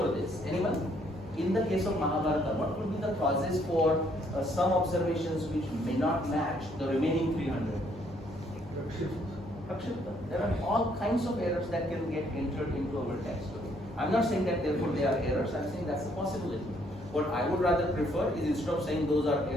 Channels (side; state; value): both; normal; correlation 0.67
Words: this? Anyone? In the case of Mahabharata, what could be the causes for some observations which may not match the remaining 300? Prakshipta. There are all kinds of errors that can get entered into our text. I'm not saying that therefore they are errors, I'm saying that's a possibility. What I would rather prefer is instead of saying those are